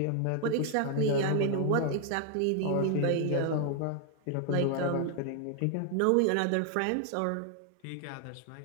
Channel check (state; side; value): different; both; correlation 0.00